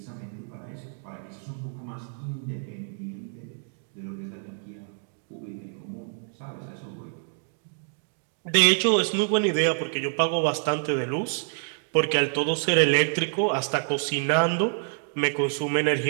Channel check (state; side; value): silent; left; 58 dB below the other